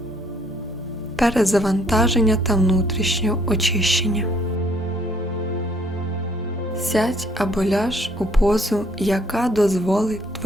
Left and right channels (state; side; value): normal; both; correlation 0.65